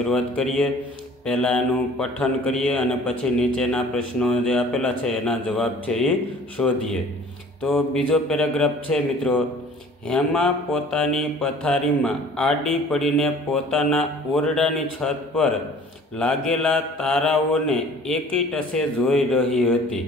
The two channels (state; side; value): normal; both; correlation 0.49